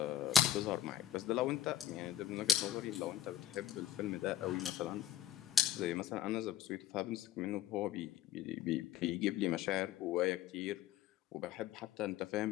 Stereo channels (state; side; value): quieter; right; 10.9 dB